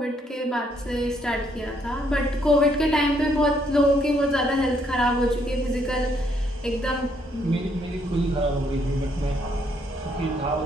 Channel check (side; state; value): both; normal; correlation 0.71